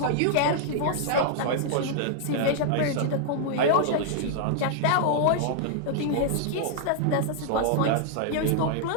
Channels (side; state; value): both; different; correlation -0.01